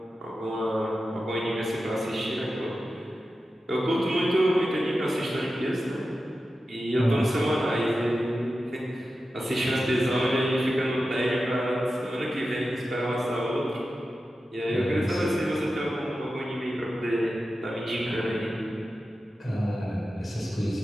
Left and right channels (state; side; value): normal; both; correlation 0.92